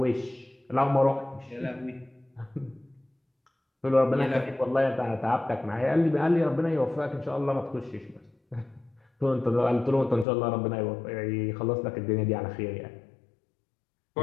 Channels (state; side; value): drops out; right; at 10.2 s